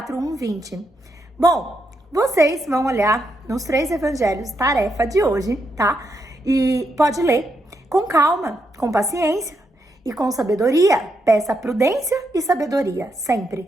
1, 20. Bom, vocês vão olhar nos 3 evangelhos, tarefa de hoje, tá? E pode ler com calma, com paciência e com sabedoria. Peça prudência e sabedoria, sempre,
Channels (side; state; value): both; normal; correlation 0.81